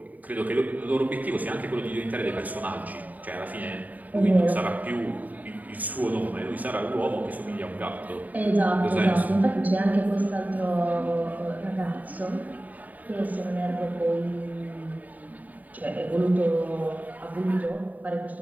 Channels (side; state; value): left; late; 0.076 ms